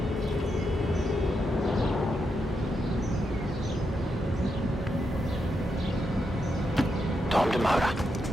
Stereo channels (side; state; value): both; normal; correlation 0.84